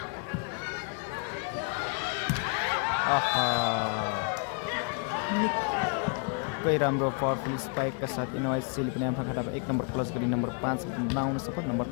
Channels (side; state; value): right; quieter; 37.4 dB